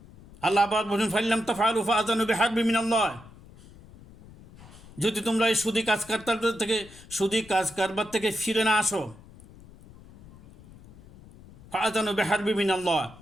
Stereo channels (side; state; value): left; noise; rumble, 21 dB below the sound